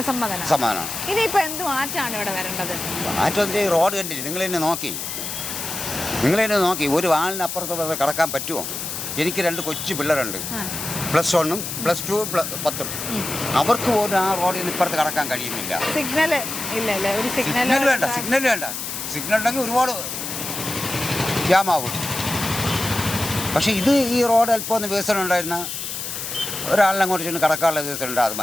സമ്മതനാണ്. ഇനിയിപ്പോ എന്ത് മാറ്റമാണ് ഇവിടെ വരേണ്ടത്? മാറ്റം റോഡ് കണ്ടിട്ട് നിങ്ങൾ തന്നെ നോക്കി ഒരു വാളിനപ്പുറത്തോടെ കടക്കാൻ പറ്റുമോ? എനിക്ക് 2 കൊച്ചു പിള്ളേരുണ്ട്, +1, +2, +10. അവർക്ക് പോലും ആ റോഡിൽ നിന്ന് ഇപ്പുറത്ത് കടക്കാൻ കഴിയുന്നില്ല. സിഗ്നൽ വേണ്ട. സിഗ്നൽ ഉണ്ടെങ്കിൽ ഒരുപാട് ജാമാവും. പക്ഷേ ഈ റോഡ് അല്പം ഒന്ന് വികസനം ഉണ്ടായിരുന്ന ഒരാളിനെ അങ്ങോട്ട് ചെന്ന് കടക്കാനുള്ള വികസനം ഉണ്ട്, അത്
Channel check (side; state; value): left; noise; hiss, 5 dB below the sound